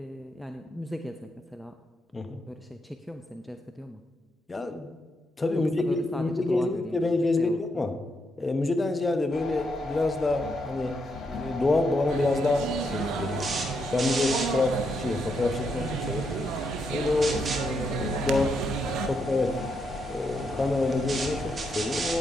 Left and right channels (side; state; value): both; normal; correlation 0.80